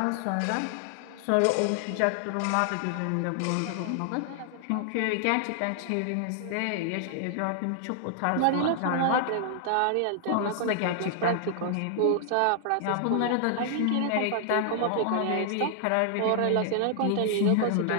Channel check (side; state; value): both; different; correlation 0.00